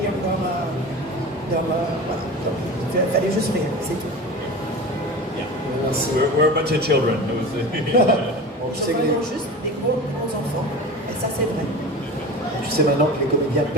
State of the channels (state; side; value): normal; both; correlation 0.32